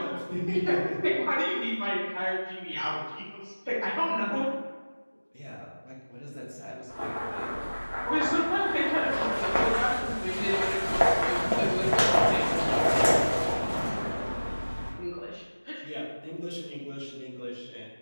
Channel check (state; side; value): inverted; both; correlation -1.00